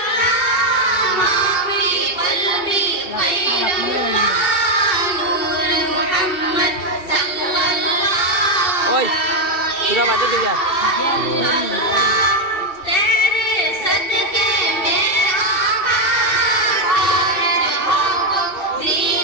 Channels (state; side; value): late; right; 2.7 ms